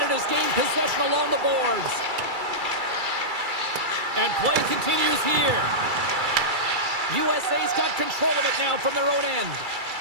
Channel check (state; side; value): late; left; 2.3 ms